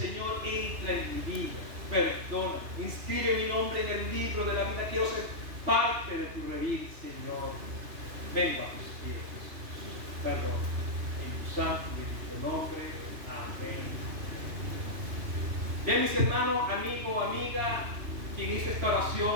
entra en mi vida, perdona, inscribe mi nombre en el libro de la vida, quiero ser parte de tu redil, Señor. Vengo a tus pies, perdona, en tu santo y bendito nombre, amén. Bien, mis hermanos, amigo, amiga, quien hizo esta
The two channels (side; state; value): left; late; 2.9 ms